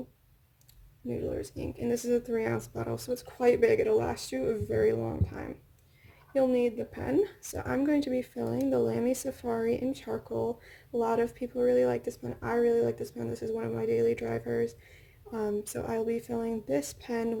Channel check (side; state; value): both; identical; correlation 1.00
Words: Noodlers ink, and this is a 3-ounce bottle, so it's quite big. It'll last you a very long time. You'll need the pen, so I'm going to be filling the Lamy Safari in charcoal. A lot of people really like this pen. I really like this pen. This is one of my daily drivers. So I'll be filling this pen